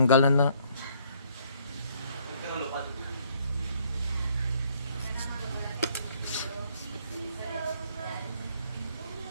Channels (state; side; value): inverted; both; correlation -0.65